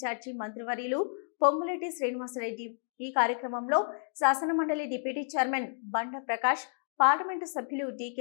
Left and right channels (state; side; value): silent; right; digital silence